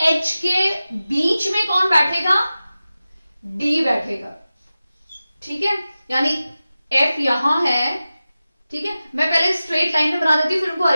H के बीच में कौन बैठेगा? D बैठेगा, ठीक है। यानी F यहां है, ठीक है। मैं पहले स्ट्रेट लाइन में बना देती हूं फिर उनको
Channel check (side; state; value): both; inverted; correlation -0.95